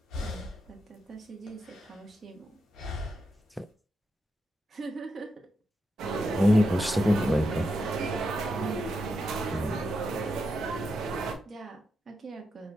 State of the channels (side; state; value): both; normal; correlation 0.85